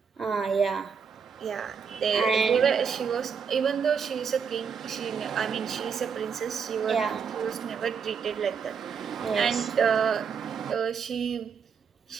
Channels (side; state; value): left; quieter; 6.5 dB